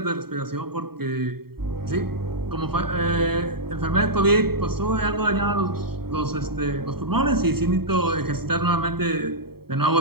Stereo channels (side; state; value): left; late; 0.95 ms